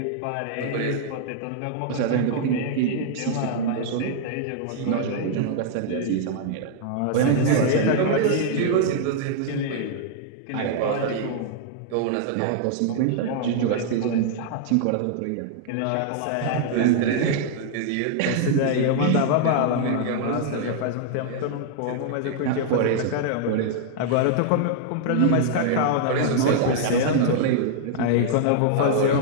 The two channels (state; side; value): different; both; correlation -0.01